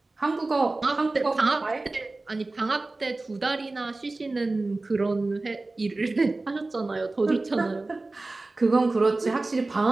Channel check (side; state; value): left; quieter; 3.2 dB